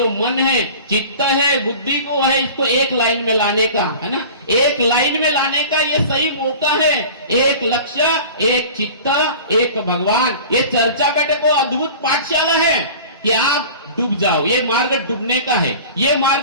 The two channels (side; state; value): both; inverted; correlation -0.40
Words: मन है, चित्त है, बुद्धि को है, इसको एक लाइन में लाने का है ना, एक लाइन में लाने का ये सही मौका है। एक लक्ष्य, एक चित्त, एक भगवान। ये चर्चा बैठक को अद्भुत पाठशाला है कि आप डूब जाओ, ये मार्ग डूबने का है, ये